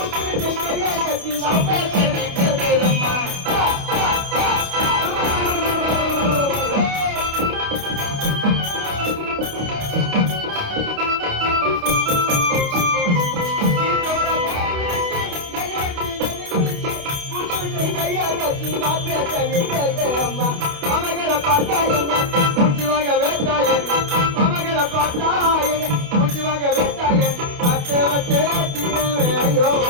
நீ கேட்ட அம்மா மமகளை பார்த்தா என்ன மூச்சு வாங்க வேட்டா என்ன மமகளை பார்த்தா என்ன மூச்சு வாங்க வேட்டா என்ன அத்தை வச்சே தீரவே ஐயோ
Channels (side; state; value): left; late; 28 ms